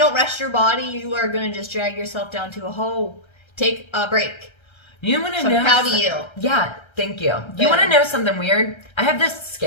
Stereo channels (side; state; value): right; late; 1.3 ms